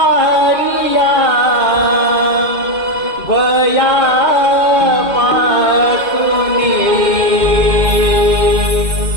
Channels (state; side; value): late; left; 2.1 ms